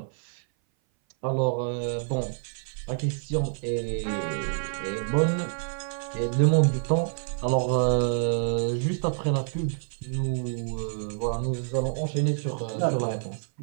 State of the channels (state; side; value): silent; left; 58 dB below the other